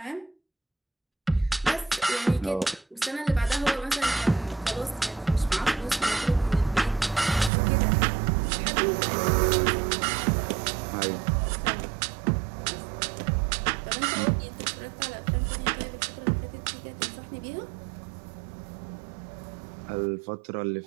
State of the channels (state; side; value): drops out; left; at 7.5 s